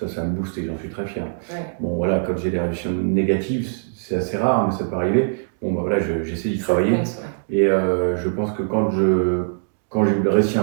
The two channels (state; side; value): silent; left; digital silence